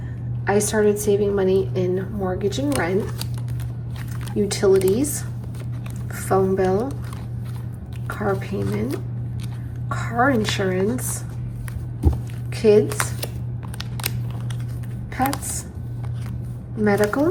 I started saving money in mortgage and rent, utilities, phone bill, car payment, car insurance, kids, pets,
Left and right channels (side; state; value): both; identical; correlation 1.00